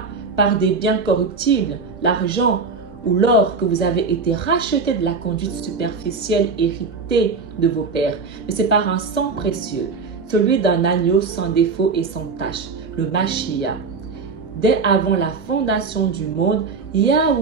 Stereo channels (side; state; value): left; quieter; 4.6 dB